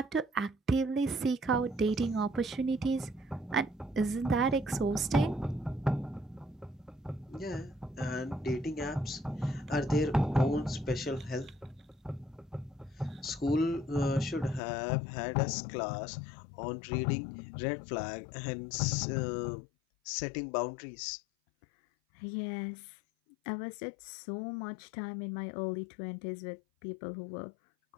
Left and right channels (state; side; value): drops out; right; at 14.6 s